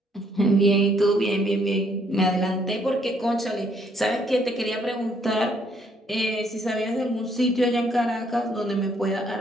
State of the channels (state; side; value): normal; both; correlation 0.68